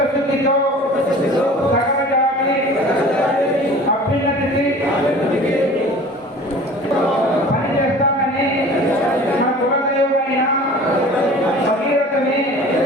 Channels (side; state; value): both; normal; correlation 0.43